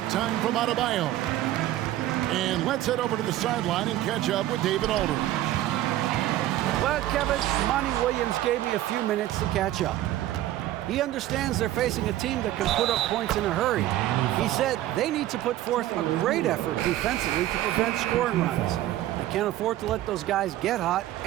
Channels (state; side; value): quieter; left; 14.2 dB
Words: time from Adebayo. And let's head over to the sideline and catch up with David Aldridge. Well, Kevin, Monty Williams gave me a few minutes to catch up. He understands they're facing a team that can put up points in a hurry. He said they need to put forth a great effort defensively to prevent scoring runs. They can't afford to let those guys get hot